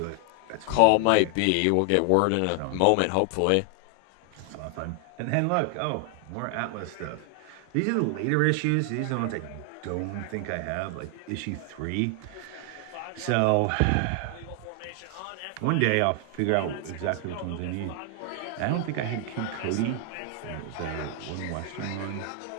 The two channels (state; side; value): different; both; correlation 0.00